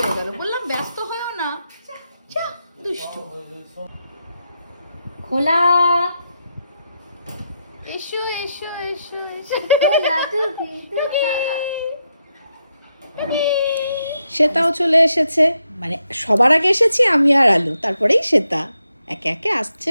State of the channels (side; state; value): both; inverted; correlation -0.83